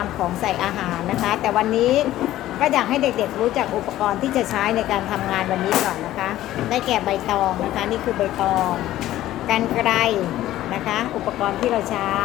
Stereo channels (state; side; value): quieter; right; 14.3 dB